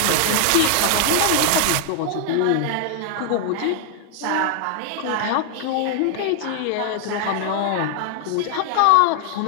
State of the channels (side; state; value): both; different; correlation 0.00